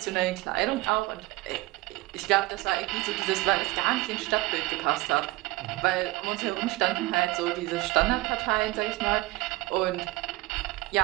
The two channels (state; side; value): quieter; left; 19.9 dB